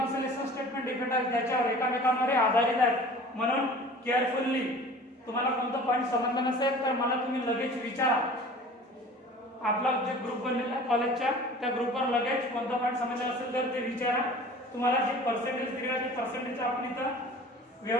स्टेटमेंट डिफेंड राहील. त्याच्यावर एकामेकांवर आधारित आहेत. म्हणून केअरफुल्ली, तुम्हाला कोणतं पॉईंट समजलं नसेल तर मला तुम्ही लगेच विचारा. आपला जे ग्रुप बनलेला आहे कॉलेजच्या, त्या ग्रुपवर लगेच कोणता पॉईंट समजला असेल तर ते विचारा. तुम्हाला जे पर्सेंटेज दिलेलं आहे ते पर्सेंटेज आपण इथं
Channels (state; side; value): normal; both; correlation 0.43